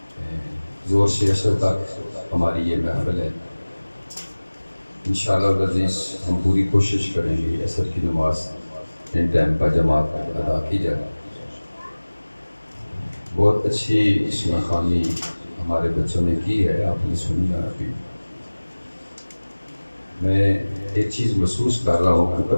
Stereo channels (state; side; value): inverted; both; correlation -1.00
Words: زور سے عصر تک ہماری یہ محفل ہے۔ انشاءاللہ العزیز ہم پوری کوشش کریں گے عصر کی نماز ان ٹائم پر جماعت ادا کی جائے۔ بہت اچھی اسم خوانی ہمارے بچوں نے کی ہے، آپ نے سنی ہے ابھی۔ میں ایک چیز محسوس کر رہا ہوں کہ